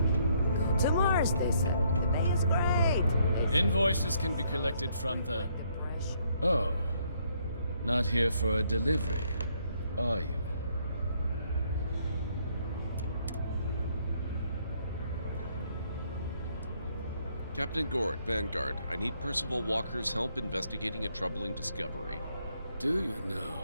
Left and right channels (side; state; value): both; inverted; correlation -0.70